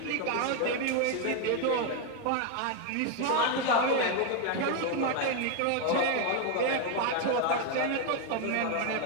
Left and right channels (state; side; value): different; both; correlation 0.01